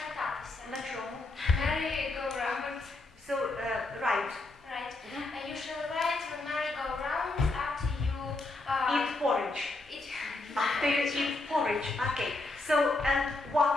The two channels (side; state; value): right; quieter; 3.1 dB